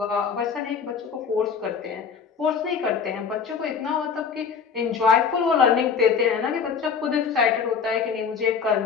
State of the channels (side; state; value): right; quieter; 6.3 dB